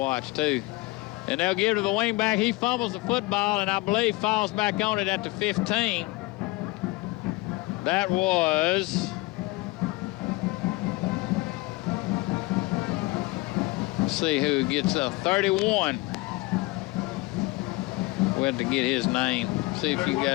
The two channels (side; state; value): right; quieter; 22.2 dB